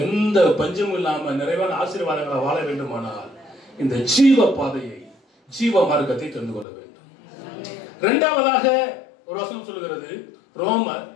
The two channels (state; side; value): drops out; right; at 6.7 s